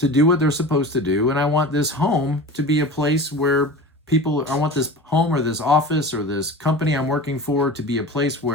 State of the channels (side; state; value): both; normal; correlation 0.34